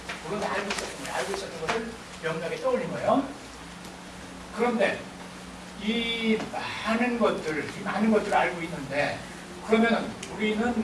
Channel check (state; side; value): identical; both; correlation 1.00